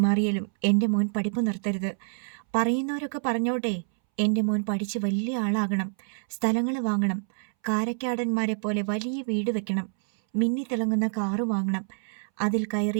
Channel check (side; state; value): left; silent; 60 dB below the other